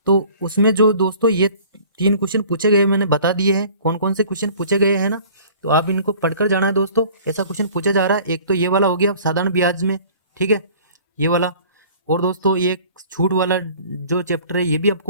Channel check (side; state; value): both; inverted; correlation -0.49